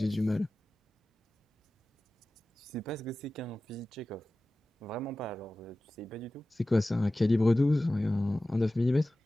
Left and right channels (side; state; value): both; normal; correlation 0.96